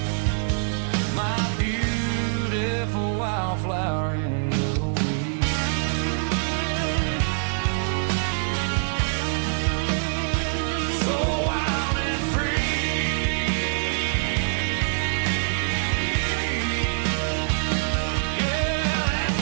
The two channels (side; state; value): left; silent; 62 dB below the other